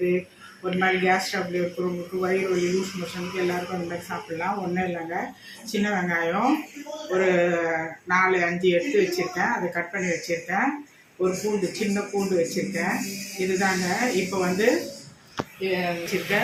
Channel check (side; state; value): both; identical; correlation 1.00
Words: ஒரு மாதிரி கேஸ் ட்ரபிள் இருக்கிறவங்களுக்கு, வயிறு வலி, லூஸ் மோஷனுக்கு எல்லாருக்கும் அந்த மாதிரி சாப்பிட்லாம். ஒன்றும் இல்லைங்க, சின்ன வெங்காயம் ஒரு 4-5 எடுத்து வச்சுருக்கேன், அதை கட் பண்ணி வச்சுருக்கேன். ஒரு பூண்டு, சின்ன பூண்டு வச்சுருக்கேன். இதுதாங்க. இப்போ வந்து